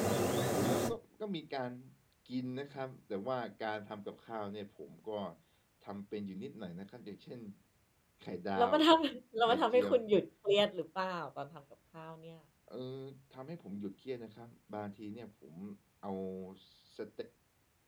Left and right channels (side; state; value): both; identical; correlation 1.00